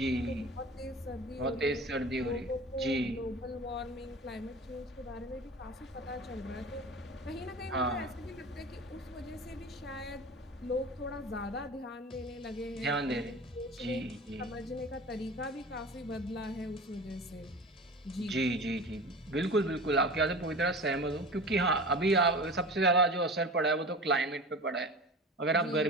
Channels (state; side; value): normal; both; correlation 0.35